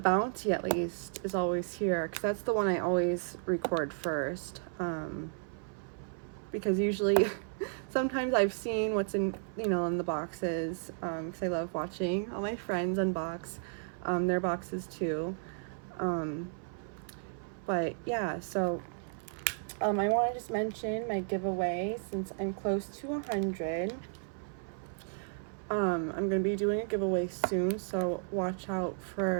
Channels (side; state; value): left; silent; 55 dB below the other